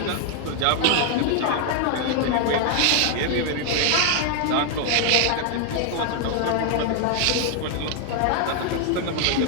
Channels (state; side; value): different; both; correlation 0.00